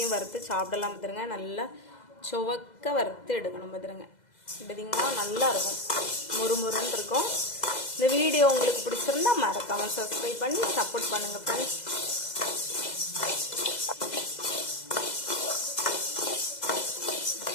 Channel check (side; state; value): right; late; 2.0 ms